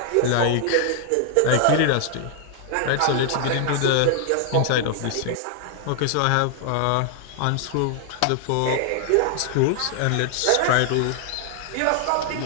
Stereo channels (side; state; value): both; different; correlation 0.00